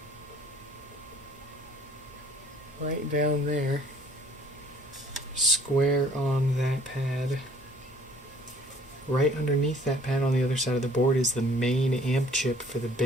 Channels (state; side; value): normal; both; correlation 0.56